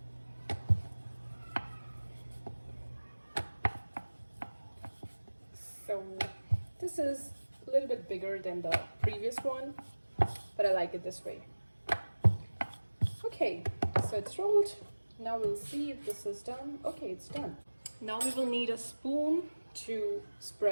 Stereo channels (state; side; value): inverted; both; correlation -1.00